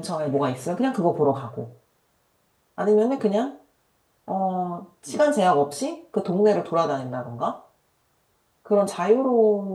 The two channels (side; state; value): both; identical; correlation 1.00